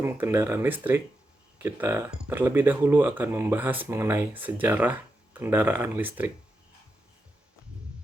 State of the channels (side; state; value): both; normal; correlation 0.87